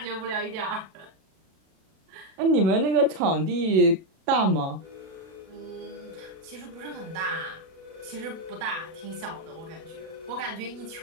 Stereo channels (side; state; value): left; late; 37 ms